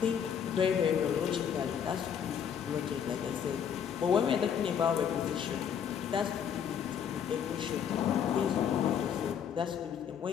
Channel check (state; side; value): quieter; right; 8.1 dB